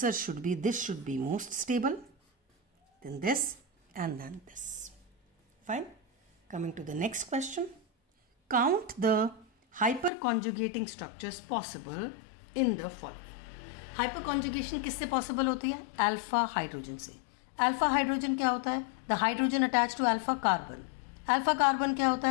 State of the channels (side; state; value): right; drops out; at 10.1 s